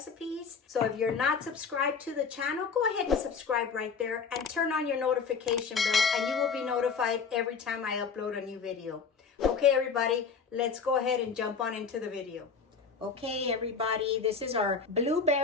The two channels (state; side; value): quieter; right; 5.6 dB